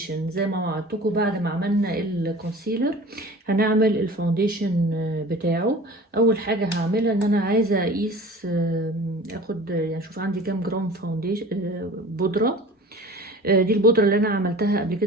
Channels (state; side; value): normal; both; correlation 0.41